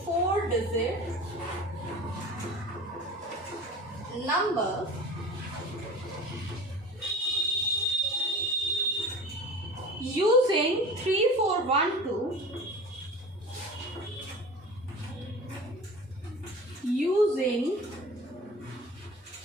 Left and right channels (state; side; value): normal; both; correlation 0.37